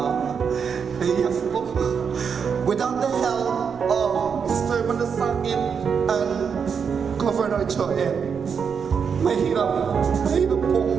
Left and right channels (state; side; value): quieter; left; 6.5 dB